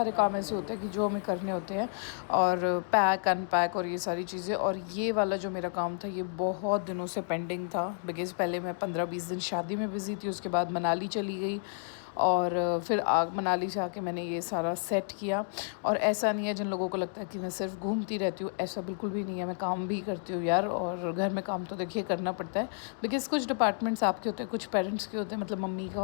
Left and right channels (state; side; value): silent; right; digital silence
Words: काम ऐसे होते हैं कि जो हमें करने होते हैं, और पैक अनपैक और ये सारी चीज़ें। और ये वाला जो मेरा काम था ये बहुत दिनों से पेंडिंग था, बिकॉज़ पहले मैं 15-20 दिन शादी में बिज़ी थी, उसके बाद मनाली चली गई और फिर मनाली से आके मैंने ये सारा सेट किया। और ऐसा नहीं है जिन लोगों को लगता है कि मैं सिर्फ घूमती रहती हूँ, ऐसा बिल्कुल भी नहीं है, मैं काम भी करती हूँ यार। और घर में काम तो देखिए करना पड़ता है, बिकॉज़ कुछ डिपार्टमेंट्स आपके होते हैं, कुछ पेरेंट्स के होते हैं। मतलब मम्मी का